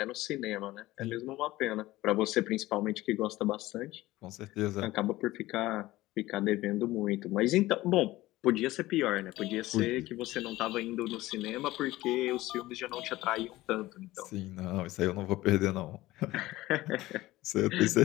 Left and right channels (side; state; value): right; quieter; 17.6 dB